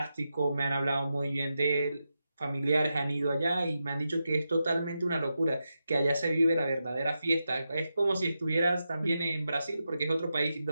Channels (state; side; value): inverted; both; correlation -0.88